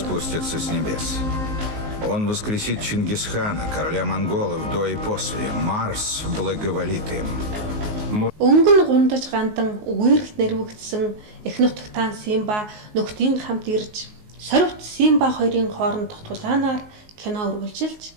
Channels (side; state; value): left; late; 19 ms